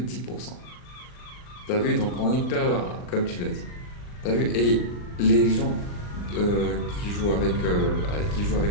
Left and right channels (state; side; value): late; right; 39 ms